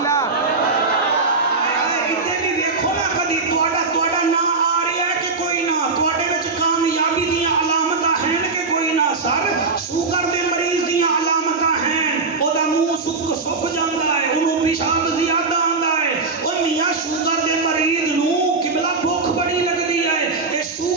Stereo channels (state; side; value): quieter; left; 4.1 dB